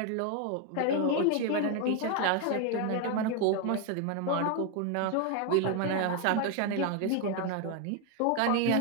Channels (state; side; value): different; both; correlation 0.01